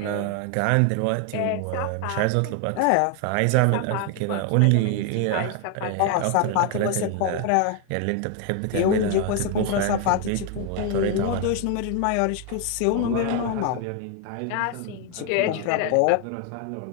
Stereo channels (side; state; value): both; different; correlation 0.01